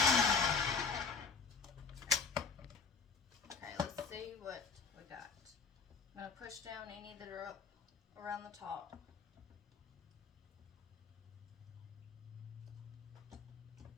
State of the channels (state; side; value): quieter; right; 5.3 dB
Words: push down any that are up around the top.